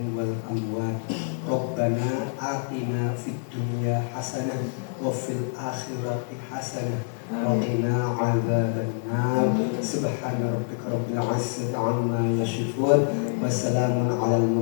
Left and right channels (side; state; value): right; silent; digital silence